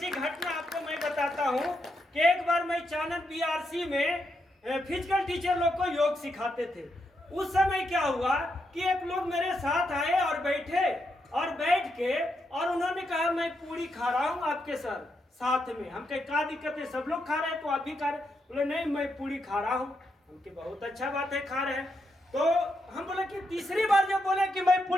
घटना आपको मैं बताता हूँ कि एक बार मैं चाणक्य बीआरसी में फिजिकल टीचर लोग को योग सिखाते थे। उस समय क्या हुआ कि एक लोग मेरे साथ आए और बैठे और बैठ के और उन्होंने कहा मैं पूरी खा रहा हूँ आपके सर साथ में। हम कहे क्या दिक्कत है, सब लोग खा रहे हैं तो आप भी खा रहे? बोले नहीं मैं पूरी खा रहा हूँ। हमके बहुत अच्छा बात है, खा रहे हैं। तो हम बोले कि तीसरी बार जब बोले कि मैं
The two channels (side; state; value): both; normal; correlation 0.82